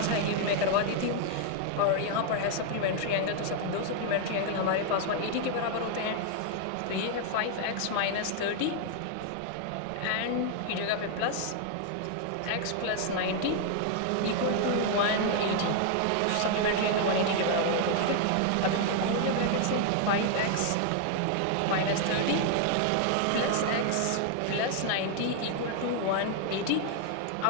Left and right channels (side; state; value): both; different; correlation 0.00